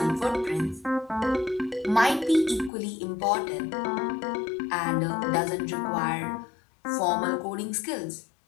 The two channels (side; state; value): right; drops out; at 2.7 s